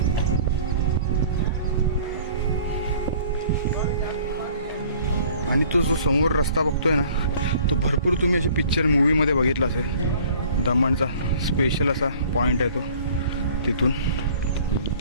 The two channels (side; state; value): both; inverted; correlation -0.51